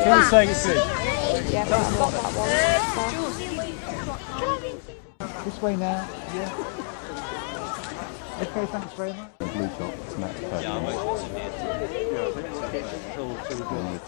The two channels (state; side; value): silent; right; digital silence